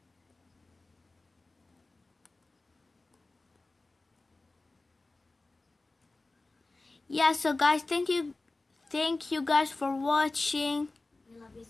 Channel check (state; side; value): quieter; right; 3.2 dB